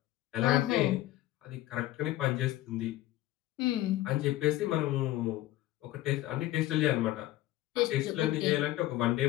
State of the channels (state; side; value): quieter; right; 15.7 dB